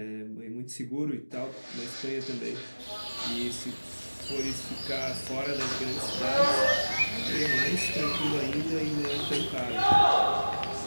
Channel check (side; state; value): both; inverted; correlation -1.00